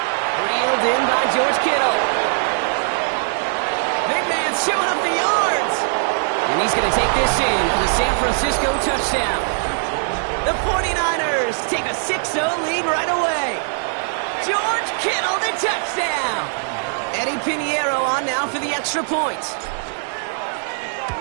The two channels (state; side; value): silent; left; digital silence